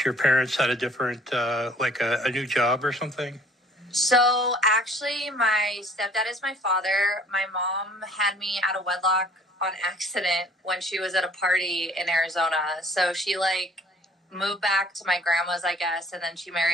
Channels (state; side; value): normal; both; correlation 0.54